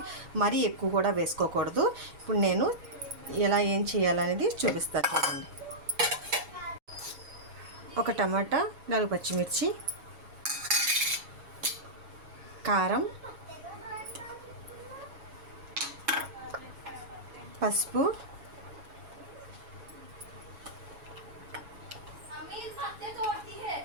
మరీ ఎక్కువ కూడా వేసుకోకూడదు. ఇప్పుడు నేను ఎలా ఏం చేయాలనేది చూపిస్తాను. చూడండి, ఒక టమాటా, 4 పచ్చిమిర్చి, కారం, పసుపు,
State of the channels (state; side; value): late; left; 7.2 ms